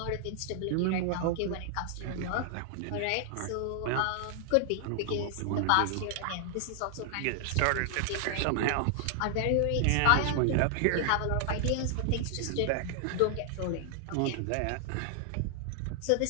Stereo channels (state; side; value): different; both; correlation 0.00